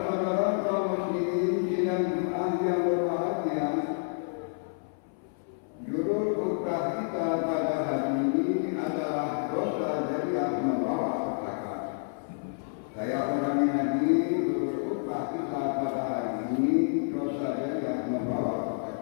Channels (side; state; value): right; silent; 58 dB below the other